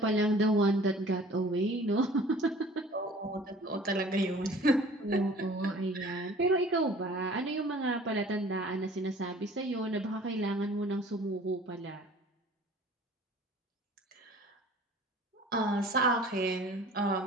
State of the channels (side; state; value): both; normal; correlation 0.48